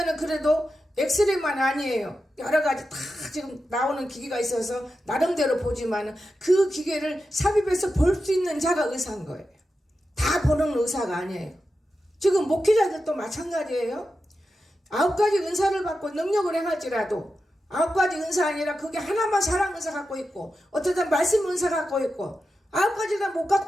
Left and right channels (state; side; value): normal; both; correlation 0.90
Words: 그래도 엑스레이만 아니에요. 여러 가지 다 지금 나오는 기계가 있어서 나름대로 보지만 그 기계를 삽입해서 볼 수 있는 자가 의사인 거예요. 다 보는 의사가 아니에요. 지금 목회자들도 마찬가지예요. 9가지 은사를 받고 능력을 행할지라도 9가지 은사 아니라 그게 하나만 사랑 은사 갖고 있고 어쩌다 말씀 은사 갖고 있고 9가지 다 못